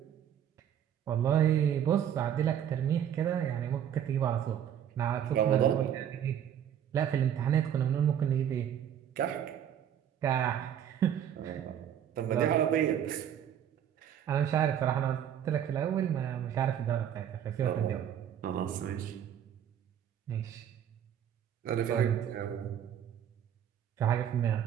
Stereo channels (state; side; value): quieter; left; 9.6 dB